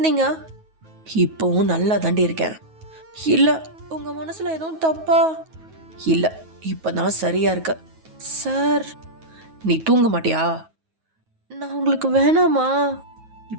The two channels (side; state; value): left; late; 9.3 ms